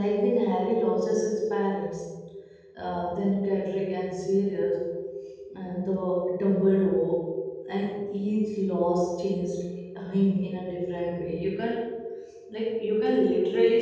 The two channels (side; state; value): both; identical; correlation 1.00